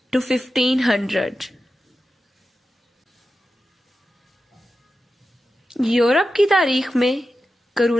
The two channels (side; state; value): both; normal; correlation 0.92